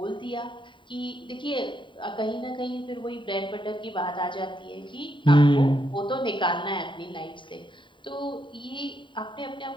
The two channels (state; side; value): late; right; 0.23 ms